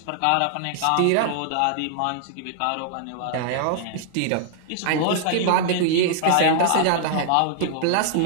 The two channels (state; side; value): different; both; correlation 0.00